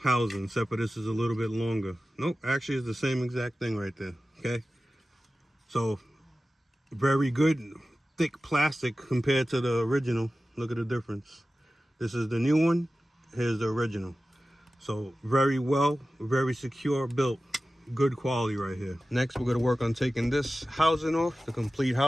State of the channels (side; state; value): both; normal; correlation 0.95